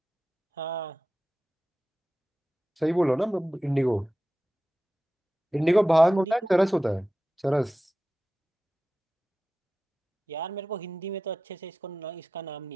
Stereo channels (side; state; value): both; normal; correlation 0.94